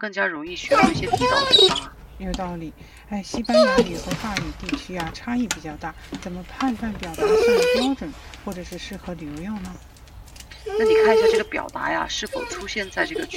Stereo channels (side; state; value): both; identical; correlation 1.00